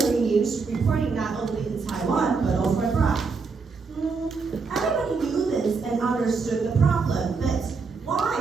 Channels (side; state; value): left; quieter; 4.7 dB